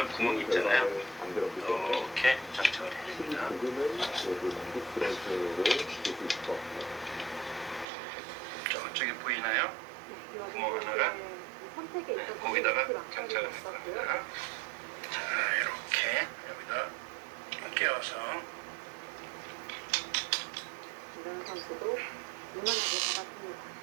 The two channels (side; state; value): left; drops out; at 7.9 s